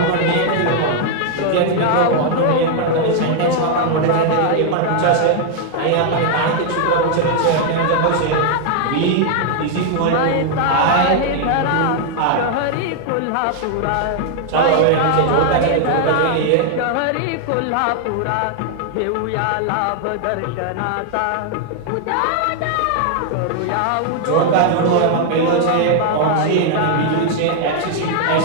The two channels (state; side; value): different; both; correlation 0.00